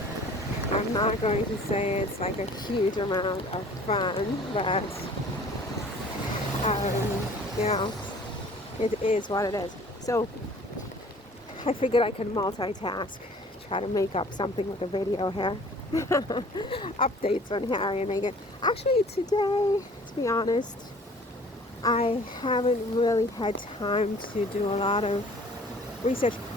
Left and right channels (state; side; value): normal; both; correlation 0.51